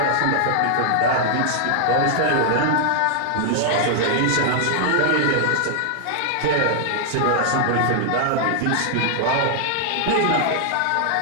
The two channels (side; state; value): both; different; correlation -0.01